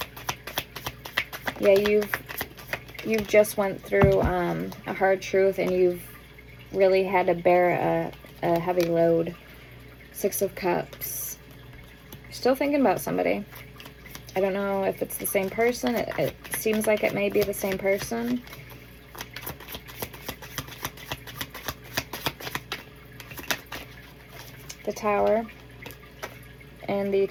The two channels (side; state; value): both; identical; correlation 1.00